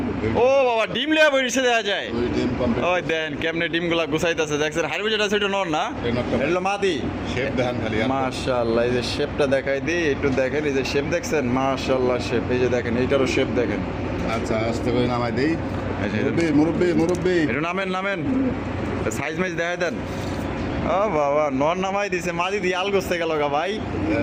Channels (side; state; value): both; identical; correlation 1.00